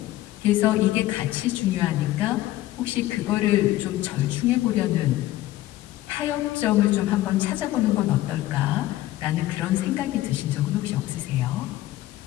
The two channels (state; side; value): quieter; right; 15.6 dB